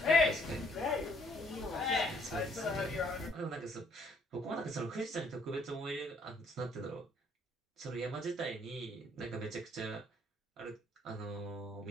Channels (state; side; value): normal; both; correlation 0.65